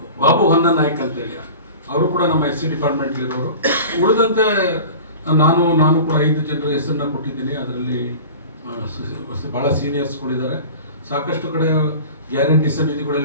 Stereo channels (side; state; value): both; inverted; correlation -0.38